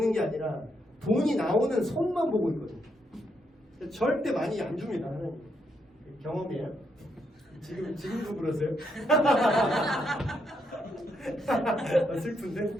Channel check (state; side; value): normal; both; correlation 0.78